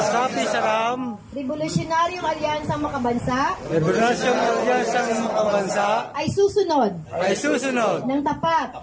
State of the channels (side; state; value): both; identical; correlation 1.00